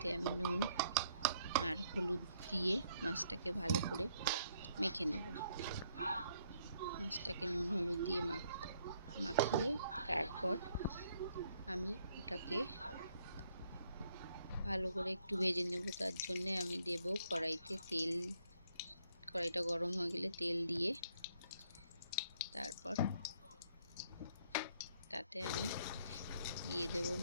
আমি নুন আর হলুদ দিয়ে মাছটাকে ভালো করে মেখে নেব। মাছটাকে নুন হলুদ দিয়ে মাখিয়ে তারপর আমি ওটাকে ভালো করে একটু ভেজে নেব। তার জন্যে আমি দেব কড়াইতে তেল। কড়াইটা গরম হয়ে গেলে তেল দিয়ে তারপর তাতে আমি দিয়ে দেব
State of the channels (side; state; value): both; inverted; correlation -0.69